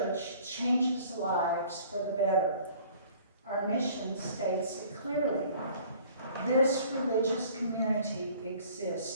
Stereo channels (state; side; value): inverted; both; correlation -0.52